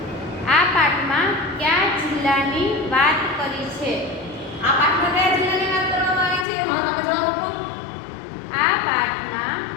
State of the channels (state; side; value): drops out; right; at 6.5 s